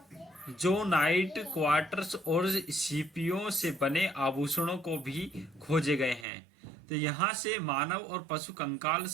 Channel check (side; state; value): left; drops out; at 6.2 s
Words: क्वार्ट्स और सीपियों से बने आभूषणों को भी खोजे गए हैं। तो यहाँ से मानव और पशु कंकाल